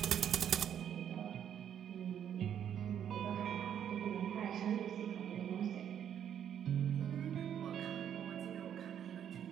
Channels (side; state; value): left; quieter; 9.3 dB